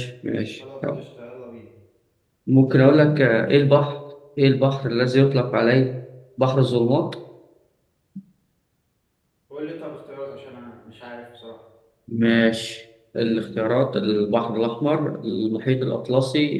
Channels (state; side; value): identical; both; correlation 1.00